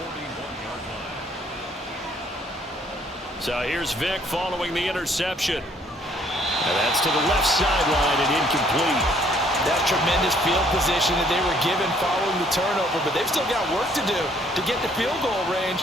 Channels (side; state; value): both; normal; correlation 0.63